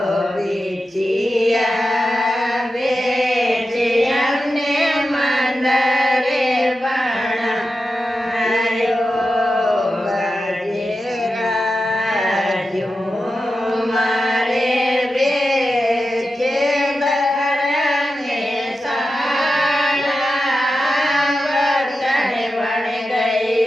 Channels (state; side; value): normal; both; correlation 0.91